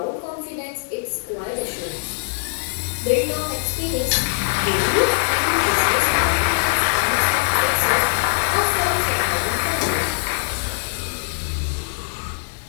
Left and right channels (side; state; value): right; silent; 62 dB below the other